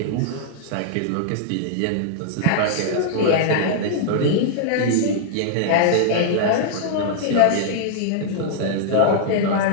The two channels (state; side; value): different; both; correlation -0.01